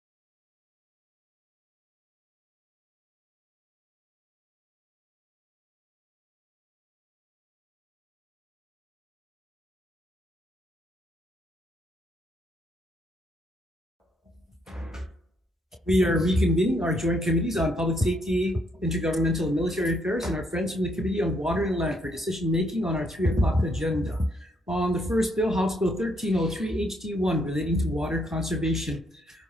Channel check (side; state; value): both; normal; correlation 0.72